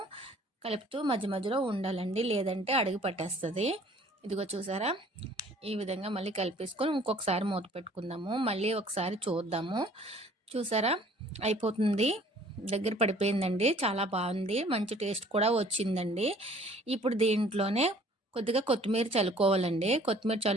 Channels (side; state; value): both; normal; correlation 0.54